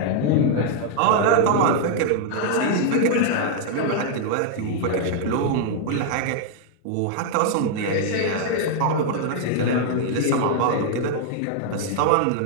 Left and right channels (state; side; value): different; both; correlation -0.01